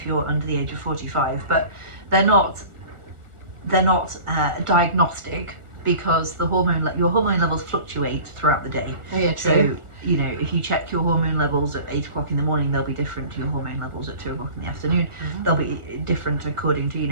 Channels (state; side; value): late; left; 1.4 ms